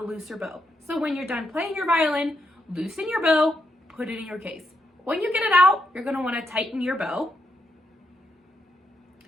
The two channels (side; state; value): both; normal; correlation 0.80